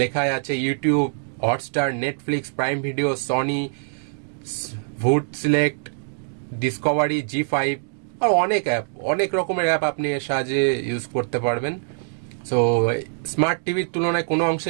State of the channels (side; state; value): left; silent; digital silence